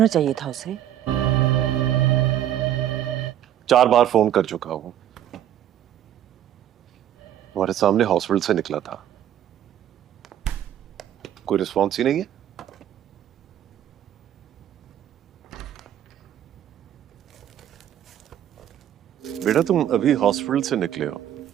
चाहिए था उसे। 4 बार फोन कर चुका हूं, तुम्हारे सामने हॉस्पिटल से निकला था, कोई रिस्पॉन्स ही नहीं है। बेटा तुम अभी हॉस्पिटल से निकले हो?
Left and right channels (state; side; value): quieter; left; 11.0 dB